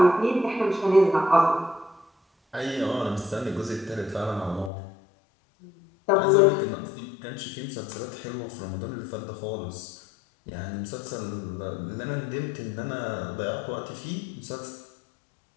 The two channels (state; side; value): drops out; right; at 4.7 s